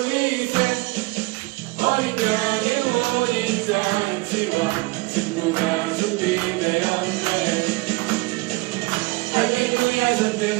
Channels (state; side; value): quieter; left; 24.2 dB